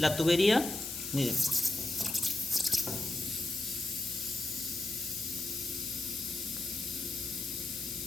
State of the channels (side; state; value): left; noise; hiss, 6 dB below the sound